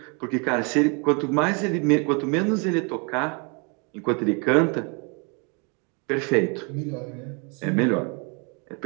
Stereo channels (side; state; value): left; quieter; 33.1 dB